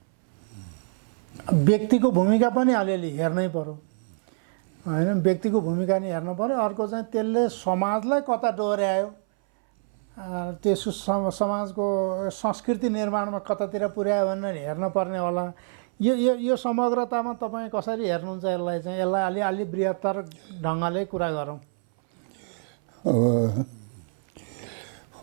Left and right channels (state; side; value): silent; left; 60 dB below the other